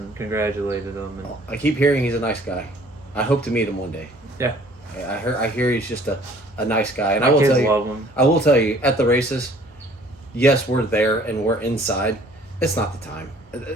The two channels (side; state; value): both; normal; correlation 0.55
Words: congratulated him. And I keep hearing he's a nice guy. I hope to meet him one day. Yeah. I hear he's just a nice guy, and My kids love him. I will tell you at the races, yes, we're there and we're inside. It's not the time.